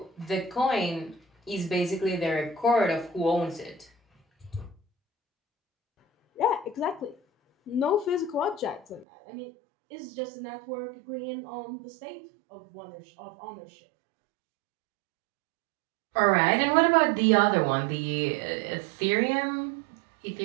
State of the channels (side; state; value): left; drops out; at 9.1 s